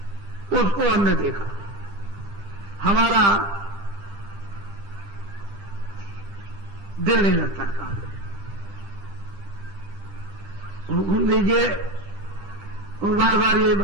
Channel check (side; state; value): left; late; 10 ms